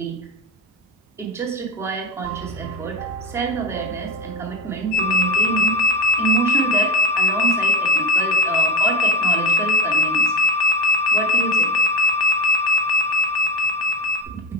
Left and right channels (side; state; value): both; normal; correlation 0.22